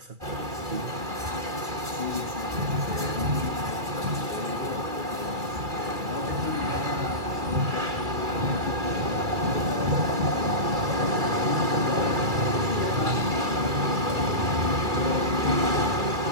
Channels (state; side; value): late; left; 2.3 ms